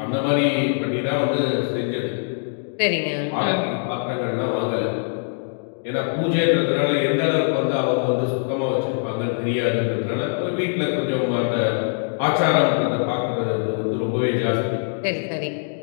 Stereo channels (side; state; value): right; silent; 64 dB below the other